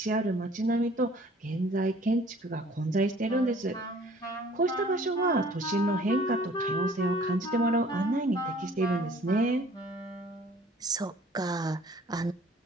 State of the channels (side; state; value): both; normal; correlation 0.53